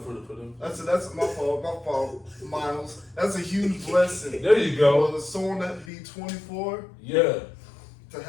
them. That's my fault, Miles. That's a huge blessing. There you go. For someone that be 24, Yeah. to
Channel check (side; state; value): right; drops out; at 5.9 s